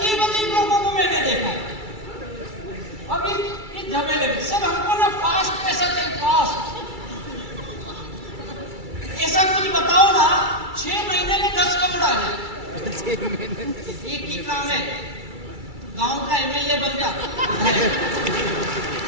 अजीब लोगों को मैंने देखा है। अभी इस झमेले में सब हमको ना फास्ट पैसा चाहिए, फास्ट। ऐसा कुछ बताओ ना 6 महीने में 10 करोड़ आ जाए। एक ही काम है, गांव का एमएलए बन जा।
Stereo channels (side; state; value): left; late; 2.3 ms